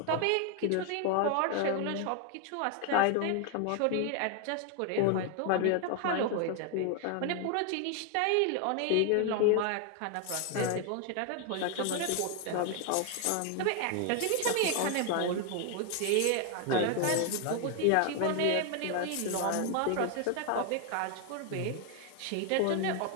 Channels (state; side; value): different; both; correlation 0.00